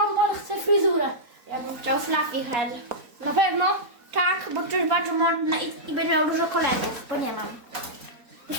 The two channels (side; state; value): left; late; 4.2 ms